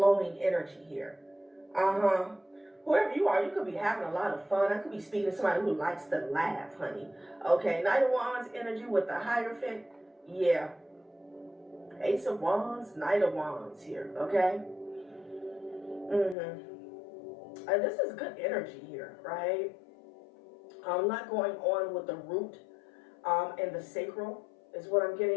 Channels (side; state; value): right; drops out; at 16.4 s